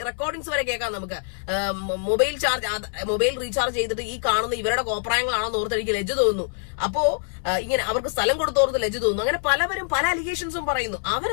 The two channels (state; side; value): silent; right; 62 dB below the other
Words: റെക്കോർഡിങ്സ് വരെ കേൾക്കാം നമുക്ക്. മൊബൈൽ റീചാർജ് ചെയ്തിട്ട് ഈ കാണുന്ന ഇവരുടെ കോപ്രായങ്ങളാണെന്ന് ഓർത്ത് എനിക്ക് ലജ്ജ തോന്നുന്നു. അപ്പോ ഇങ്ങനെ അവർക്ക് സ്ഥലം കൊടുത്തോർത്ത് ലജ്ജ തോന്നുന്നു. അങ്ങനെ പലവരും പല അലിഗേഷൻസും പറയുന്നു.